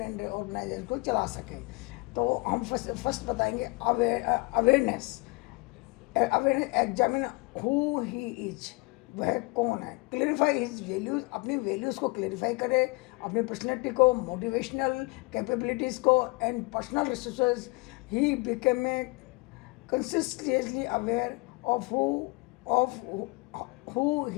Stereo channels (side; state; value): right; quieter; 26.8 dB